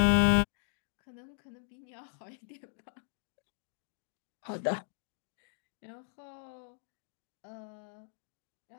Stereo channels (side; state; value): right; silent; digital silence